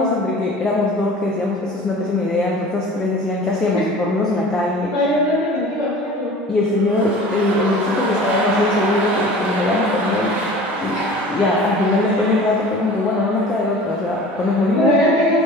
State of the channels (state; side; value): normal; both; correlation 0.42